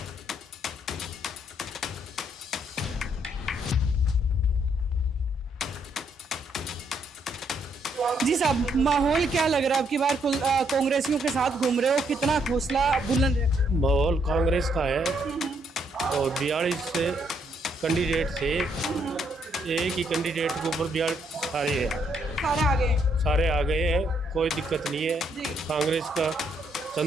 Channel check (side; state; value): both; normal; correlation 0.72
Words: जी साहब, माहौल क्या लग रहा है? अब की बार कांग्रेसियों के साथ घूम रहे हो, कितना हौसला बुलंद है? माहौल कांग्रेस का है और 42 से कैंडिडेट थे, एक ही कैंडिडेट के ऊपर 42 सारे हैं, सारे आ गए हैं, कोई दिक्कत नहीं है। कांग्रेस का